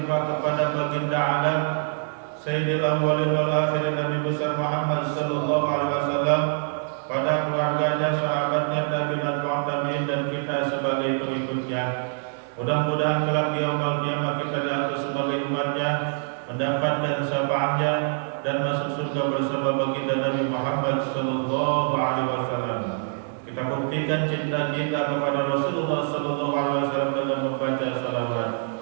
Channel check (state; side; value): silent; left; 62 dB below the other